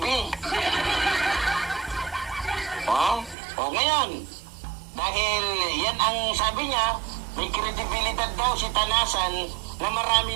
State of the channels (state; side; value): drops out; left; at 3.4 s